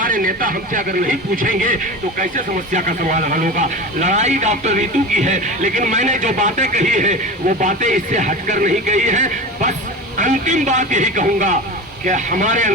नेता हमसे अगर नहीं पूछेंगे तो कैसे समस्या का समाधान होगा। लड़ाई डॉक्टर ऋतु की है, लेकिन मैंने जो बातें कही है वो बातें इससे हटकर नहीं कही है। बस अंतिम बात यही कहूंगा कि हमारे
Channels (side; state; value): both; normal; correlation 0.29